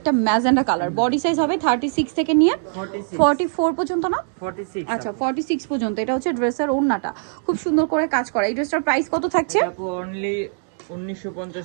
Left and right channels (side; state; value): left; silent; digital silence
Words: ম্যাজেন্ডা কালার। বডি সাইজ হবে 36 থেকে নিয়ে 44 পর্যন্ত, না 46। আচ্ছা 46 পর্যন্ত। এটা হচ্ছে ড্রেসের ওড়নাটা, খুব সুন্দর করে কাজ করা। এই ড্রেসটার প্রাইস কত থাকছে? অনলি 1950